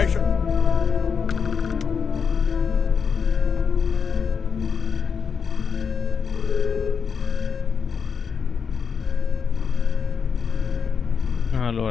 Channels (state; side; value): quieter; right; 6.2 dB